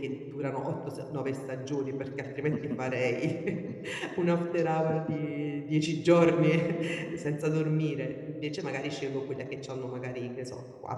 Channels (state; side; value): identical; both; correlation 1.00